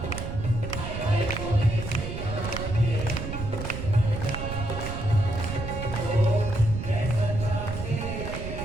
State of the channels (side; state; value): right; noise; rumble, 6 dB below the sound